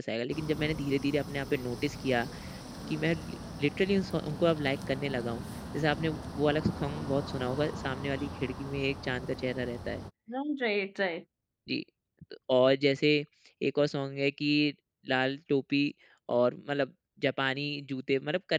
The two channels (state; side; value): identical; both; correlation 1.00